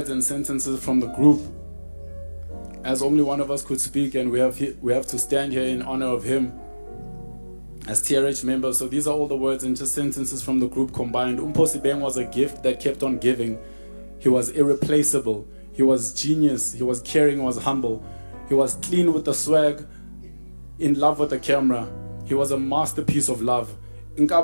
and sentences from the group, as only one of us could speak, and we have to stand here in honor of him as TRH members. So these are all the words and just sentences from the group combined. Mpho Sebeng was a gift that kept on giving. He was irreplaceable. He was genius. He was caring. He was humble. He was clean with the swag, in love with the camera. He was a masterpiece of love.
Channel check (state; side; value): inverted; both; correlation -1.00